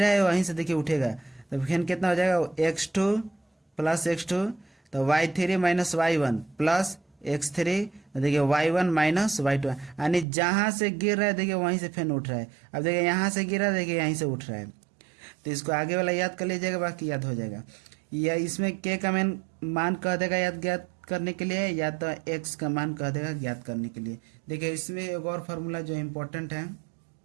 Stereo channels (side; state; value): left; drops out; at 10.2 s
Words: है वहीं से देखिए उठेगा, तो फिर कितना हो जाएगा x2 प्लस x2, तो y3 minus y1 plus x3, देखिए y1 माइनस y2, यानी जहाँ से गिर रहा है देखिए वहीं से फिर उठ रहा है। अब देखिए यहाँ से गिरा, देखिए यहीं से उठ रहा है, तो इसको आगे वाला याद कर लीजिएगा, बाकी याद हो जाएगा। या इसमें k का मान कह देगा याद ज्ञात करने के लिए, या तो x का मान कह देगा ज्ञात करने के लिए। देखिए इसमें एक और फार्मूला जो इम्पोर्टेंट है,